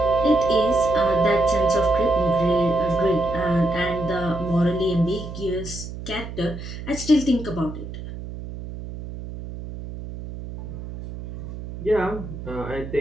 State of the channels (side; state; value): right; noise; hum, 10 dB below the sound